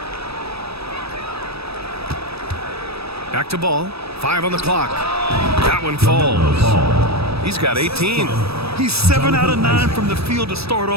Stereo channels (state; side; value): late; left; 0.78 ms